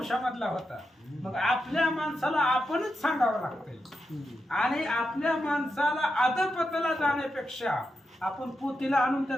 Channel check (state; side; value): normal; both; correlation 0.87